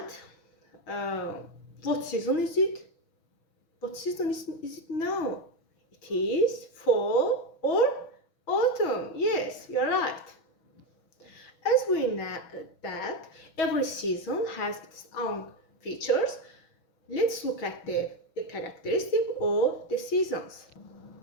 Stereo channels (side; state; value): right; late; 6.2 ms